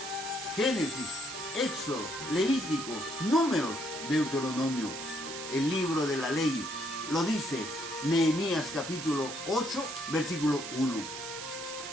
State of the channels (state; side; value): noise; right; hiss, 8 dB below the sound